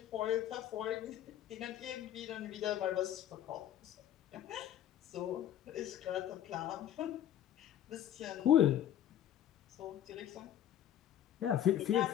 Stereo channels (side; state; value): right; quieter; 11.0 dB